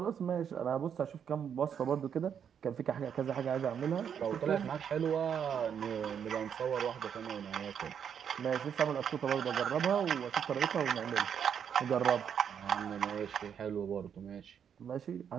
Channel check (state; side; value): quieter; left; 8.0 dB